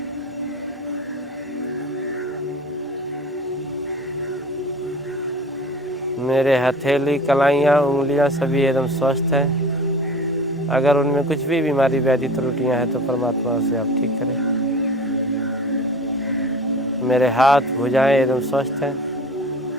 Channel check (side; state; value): both; normal; correlation 0.40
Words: मेरे हथेली, कलाइयाँ, उंगलियाँ सभी एकदम स्वस्थ हैं। अगर उनमें कुछ भी बीमारी व्याधि त्रुटियाँ हैं तो परमात्मा उसे आप ठीक करें। मेरे हाथ, भुजाएं एकदम स्वस्थ हैं।